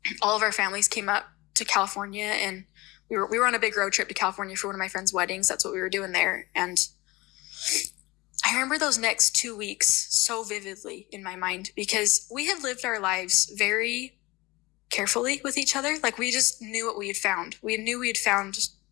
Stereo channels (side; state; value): right; quieter; 21.7 dB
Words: all of our families came up to California, and we were on a big road trip to California for one of my friends' weddings. That's what we were doing there. And I remember those next 2 weeks so vividly in my mind, because we had lived our lives very carefully with each other. Like, we just knew what we had found. We knew we had found